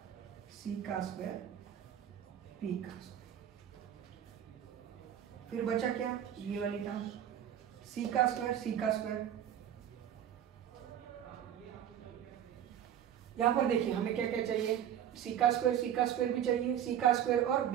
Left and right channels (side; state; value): left; quieter; 10.1 dB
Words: सी का स्क्वायर पी का स्क्वायर। फिर बचा क्या? ये वाली टर्म सी का स्क्वायर सी का स्क्वायर। यहां पर देखिए हमें क्या क्या चाहिए? सी का स्क्वायर भी चाहिए, सी का स्क्वायर और